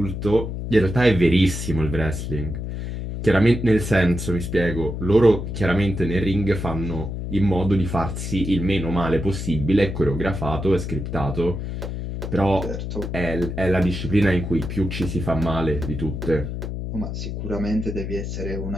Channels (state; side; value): noise; left; hum, 5 dB below the sound